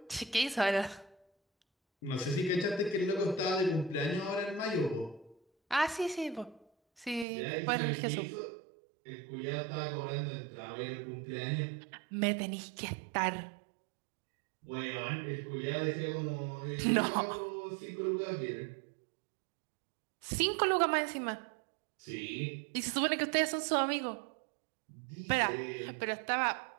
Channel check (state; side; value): drops out; left; at 7.2 s